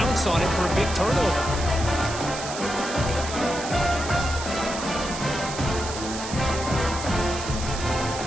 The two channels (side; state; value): right; noise; hiss, 9 dB below the sound